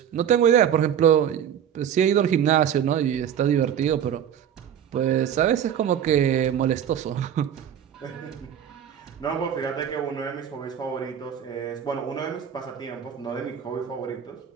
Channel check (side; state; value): left; quieter; 9.1 dB